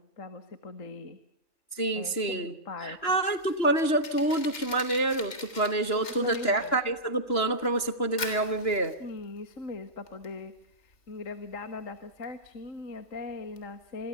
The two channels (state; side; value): late; right; 2.9 ms